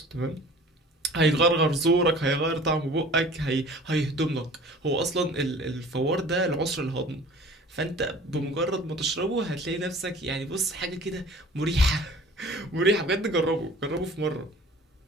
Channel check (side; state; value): both; normal; correlation 0.46